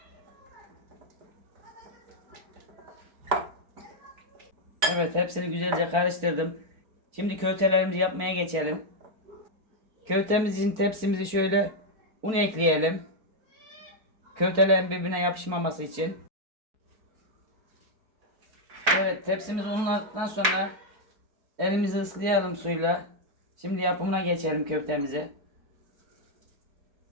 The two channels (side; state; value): left; late; 4.5 ms